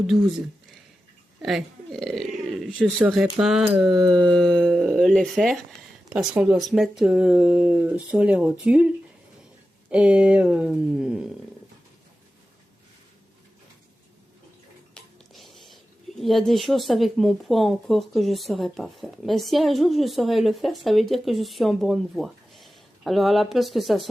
12. Ouais, je saurais pas les faire parce qu'on doit se mettre sur les rotules, et il y a des choses avec mon poids encore que je ne saurais pas faire. Mais si un jour je saurais le faire, ça veut dire que je suis en bonne voie. Alors à la place que ça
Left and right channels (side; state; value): both; normal; correlation 0.93